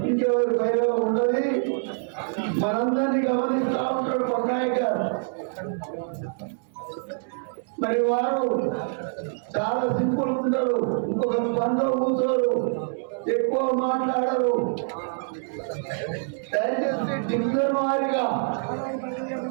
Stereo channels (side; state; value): left; silent; 61 dB below the other